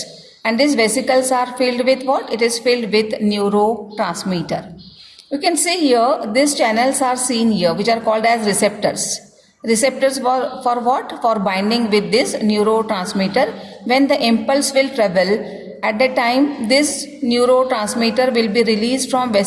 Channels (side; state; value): both; identical; correlation 1.00